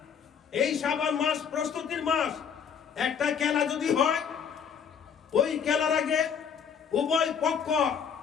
এই শাবান মাস প্রস্তুতির মাস। একটা খেলা যদি হয়, ওই খেলার আগে উভয় পক্ষ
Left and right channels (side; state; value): right; quieter; 7.2 dB